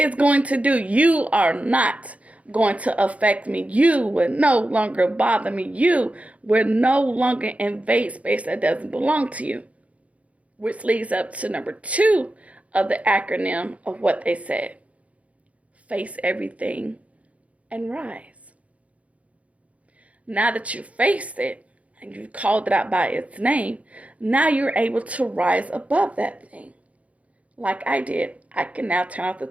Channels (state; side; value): late; left; 0.066 ms